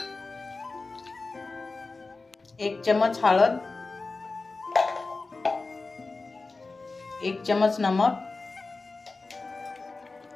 1 चम्मच हळद, 1 चम्मच नमक,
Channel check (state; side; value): quieter; right; 3.7 dB